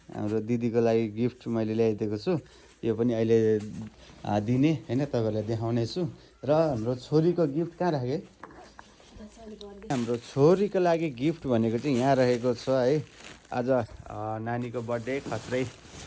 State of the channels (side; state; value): both; identical; correlation 1.00